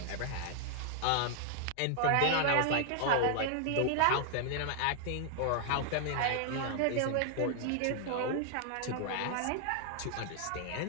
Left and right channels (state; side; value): different; both; correlation 0.00